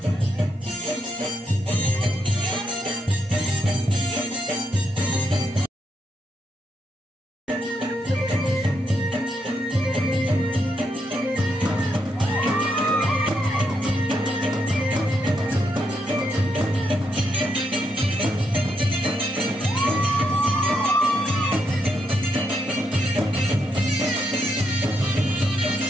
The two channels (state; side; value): normal; both; correlation 0.80